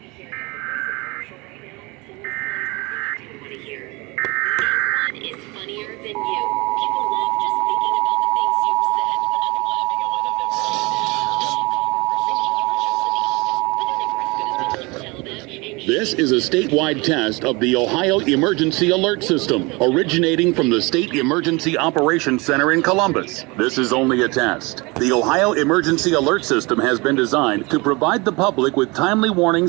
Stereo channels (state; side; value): quieter; left; 25.9 dB